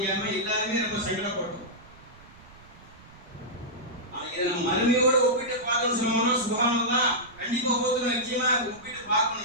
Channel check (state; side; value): noise; right; rumble, 23 dB below the sound